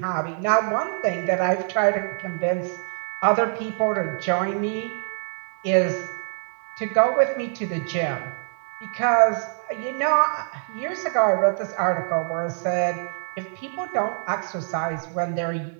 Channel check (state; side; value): silent; left; 62 dB below the other